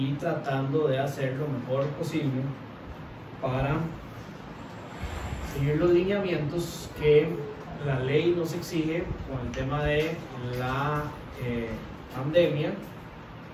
tratando de hacer lo mejor posible para seguir los lineamientos que la ley nos exige con el tema de la pandemia,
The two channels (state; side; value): identical; both; correlation 1.00